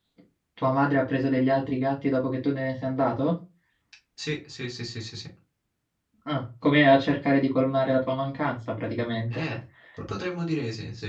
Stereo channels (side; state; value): both; identical; correlation 1.00